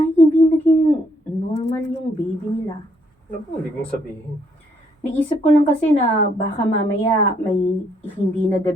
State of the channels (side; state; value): both; normal; correlation 0.70